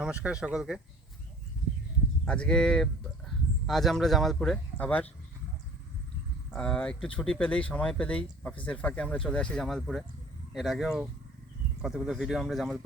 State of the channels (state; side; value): normal; both; correlation 0.49